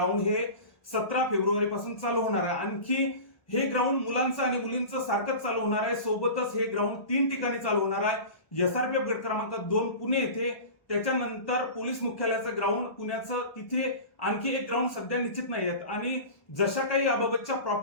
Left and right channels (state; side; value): late; right; 1.2 ms